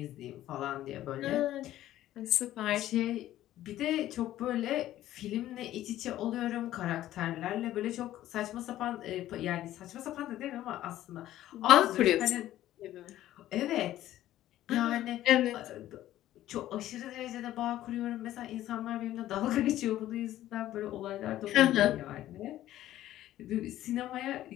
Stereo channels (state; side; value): quieter; right; 13.7 dB